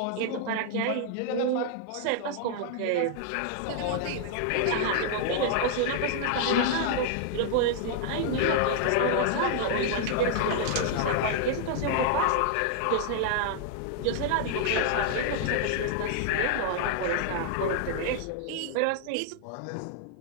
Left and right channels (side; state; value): both; different; correlation -0.01